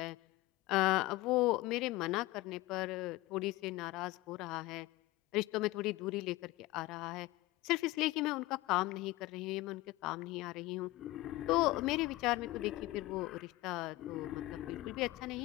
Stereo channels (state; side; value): quieter; right; 19.4 dB